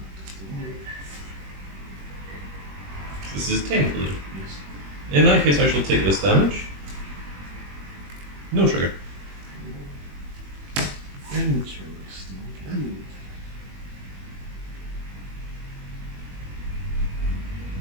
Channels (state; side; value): late; left; 21 ms